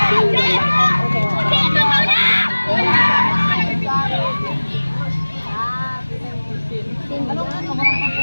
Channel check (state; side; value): inverted; both; correlation -1.00